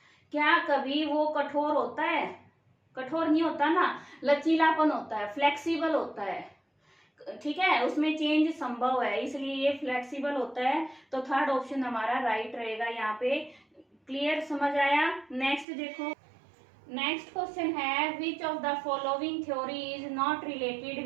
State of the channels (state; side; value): drops out; left; at 15.7 s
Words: क्या कभी वो कठोर होता है, कठोर नहीं होता ना, लचीलापन होता है, फ्लेक्सिबल होता है, ठीक है, उसमें चेंज संभव है, इसलिए ये फ्लेक्सिबल होता है। तो थर्ड ऑप्शन हमारा राइट रहेगा यहाँ पे। क्लियर, समझ आया। नेक्स्ट देखो, नेक्स्ट क्वेश्चन है which of the following theory is not related